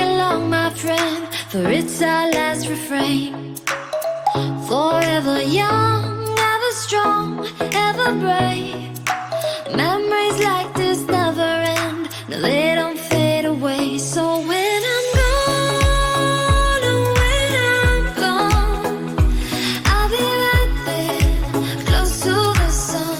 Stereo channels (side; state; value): both; identical; correlation 1.00